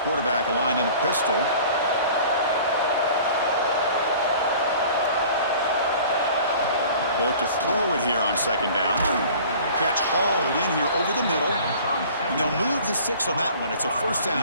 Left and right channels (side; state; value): both; inverted; correlation -0.46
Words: aligned in a pistol. They look to throw it here on second down. Catch hauled in here over the middle. And they'll move the 6 on that one. It's a first